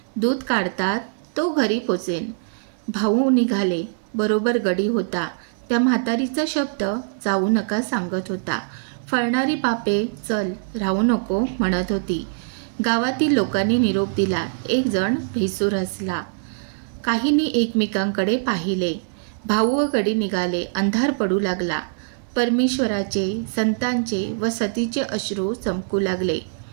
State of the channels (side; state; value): left; silent; 57 dB below the other